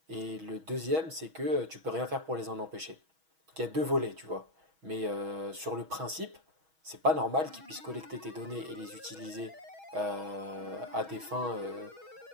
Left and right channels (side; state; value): left; late; 6.3 ms